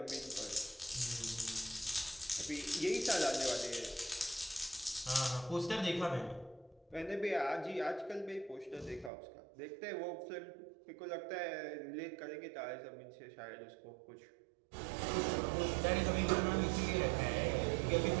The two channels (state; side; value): drops out; left; at 9.1 s